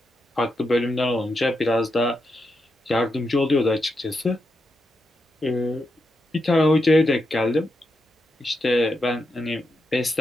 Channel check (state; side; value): normal; both; correlation 0.85